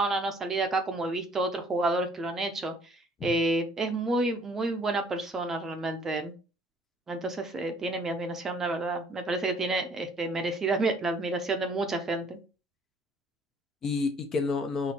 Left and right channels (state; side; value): normal; both; correlation 0.59